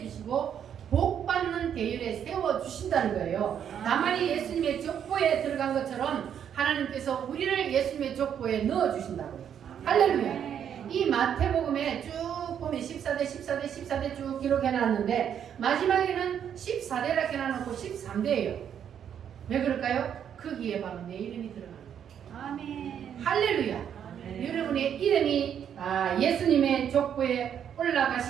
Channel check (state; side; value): quieter; left; 8.8 dB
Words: 주시고 복 받는 대열에 세워 주신다는 거예요. 나만이 예수님의 족보에 들어간 것처럼 하나님께서 우리를 예수님의 족보에 넣어 주신다고요. 할렐루야. 이 마태복음에 쭉 보면 14대 쭉 기록해 놨는데 마지막에는 14대라 해놔놓고 13대예요. 왜 그럴까요? 거기에 바로 내 이름이 들어가는 거예요. 아멘. 할렐루야. 여러분의 이름이 예수님의 족보에